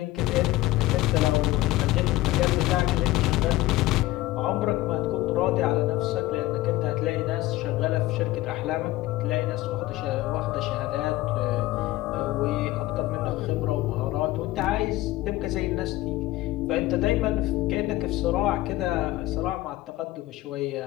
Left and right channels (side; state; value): right; quieter; 17.4 dB